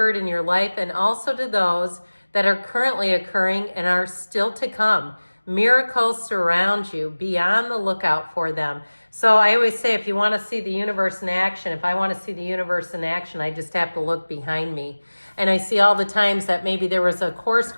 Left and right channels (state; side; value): inverted; both; correlation -1.00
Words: in your life, and also to those that are currently occurring and are still to come. Miracles surround you. Be on the lookout for them. So I always say, if you want to see the universe in action, if I want to see the universe in action, I just have to look behind me. And I see all the times that maybe there was a course